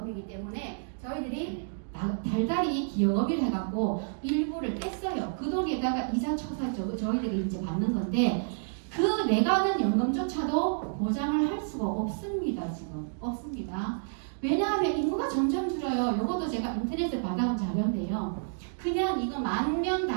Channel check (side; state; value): left; silent; digital silence